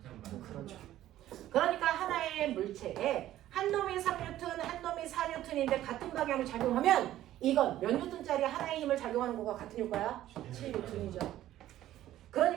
방. 그렇죠. 그러니까 하나의 물체에 한 놈이 3N, 한 놈이 4N인데 같은 방향으로 작용하면 이건 몇 N짜리 하나의 힘을 작용하는 거가 같은 효과야? 7N이죠.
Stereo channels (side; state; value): left; quieter; 13.5 dB